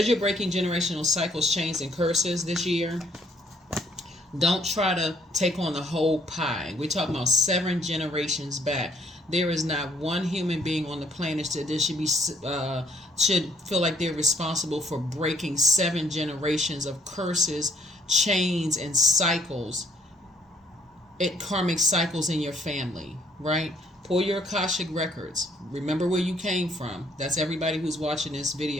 you're breaking generational cycles, chains, and curses this year, don't try to take on the whole pie. We're talking about 7 generations back. There is not one human being on the planet that should feel like they're responsible for breaking 7 generations of curses, chains, and cycles. Karmic cycles in your family, right? Pull your AKASHIC records. Remember where you came from. That's everybody who's watching this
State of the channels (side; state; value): both; normal; correlation 0.65